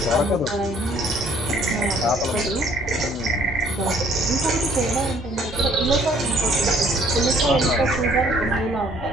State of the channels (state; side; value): normal; both; correlation 0.60